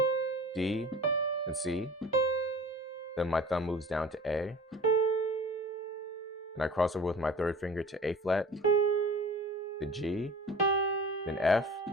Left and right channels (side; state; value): both; normal; correlation 0.41